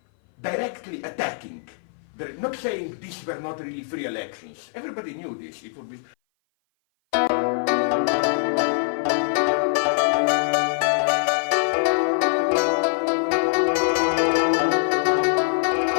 directly attacking, not saying these were not really free elections. Everybody knew this. It would be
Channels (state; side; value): silent; right; 57 dB below the other